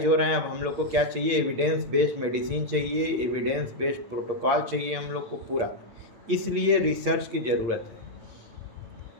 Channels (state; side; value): late; left; 8.6 ms